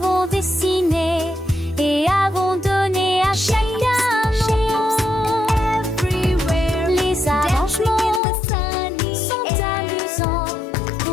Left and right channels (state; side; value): drops out; right; at 8.2 s